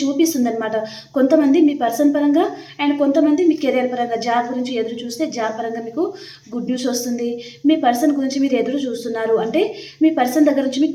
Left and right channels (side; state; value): both; identical; correlation 1.00